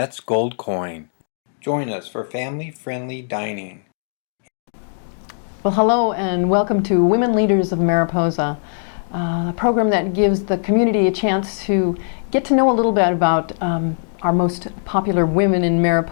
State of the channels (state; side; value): silent; right; digital silence